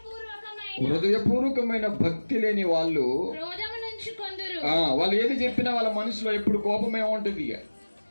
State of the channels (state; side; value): inverted; both; correlation -1.00